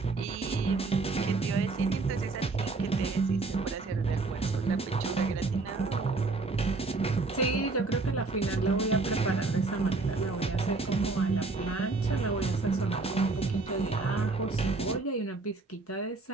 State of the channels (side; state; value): left; quieter; 3.7 dB